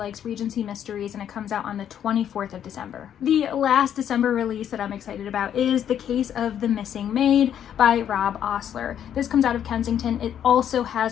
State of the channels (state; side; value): quieter; right; 9.6 dB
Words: Regency mysteries, and it comes out on the 24th of December. The last December release that I'm excited about is The Case of the Missing Maid by Rob Osler. This comes out of Kensington. It also